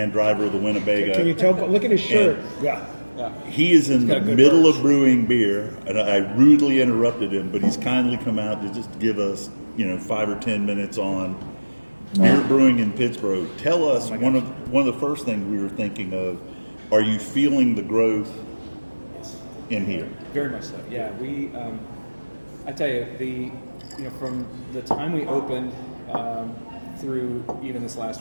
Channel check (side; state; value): both; inverted; correlation -1.00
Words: driver of the Winnebago. Can you tell? Look at his shirt. Yeah. He is in the middle of brewing beer, and I rudely interrupted him, but he's kindly come out to just give us, 5 or 10 minutes on beer brewing in Pittsboro. Tell us one of the first things we were thinking of. Are you feeling the growth in here? Very much so. Yeah, I tell you, from the time we opened through even this